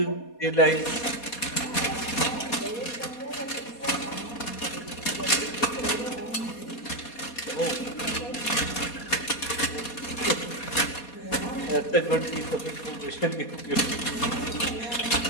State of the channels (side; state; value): right; late; 4.2 ms